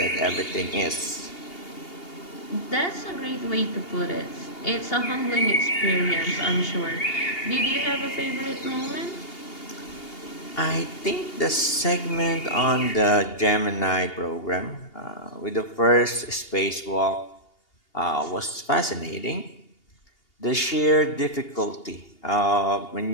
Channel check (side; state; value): right; late; 2.8 ms